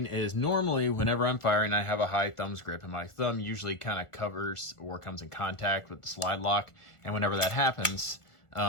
is normally whenever I'm firing, I have a high thumbs grip, and my thumb usually kind of covers or comes in contact with the slide lock. And whenever that happens,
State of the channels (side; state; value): right; late; 1.4 ms